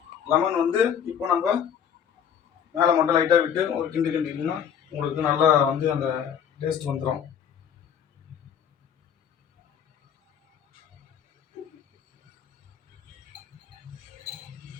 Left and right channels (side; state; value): right; quieter; 8.2 dB